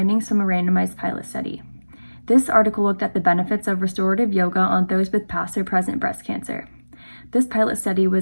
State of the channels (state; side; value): inverted; both; correlation -1.00